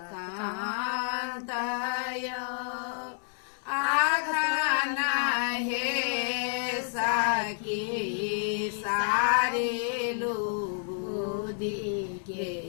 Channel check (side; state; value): right; silent; digital silence